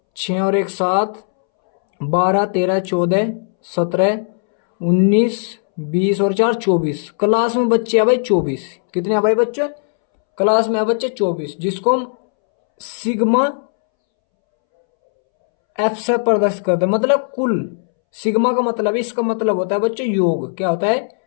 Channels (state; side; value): silent; right; 67 dB below the other